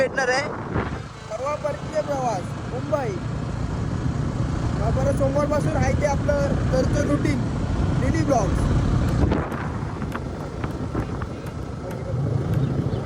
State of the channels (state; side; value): identical; both; correlation 1.00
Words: आहे. परवा परतीचा प्रवास मुंबई. परत सोमवारपासून आहे ते आपलं दरचं रुटीन डेली ब्लॉग.